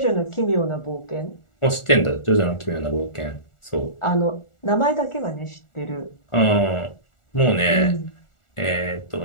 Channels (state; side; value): late; right; 1.4 ms